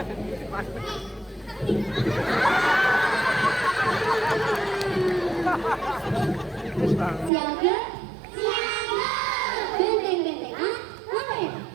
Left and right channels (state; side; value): drops out; left; at 7.3 s